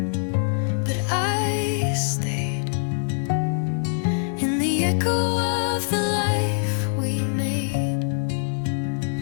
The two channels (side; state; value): right; silent; digital silence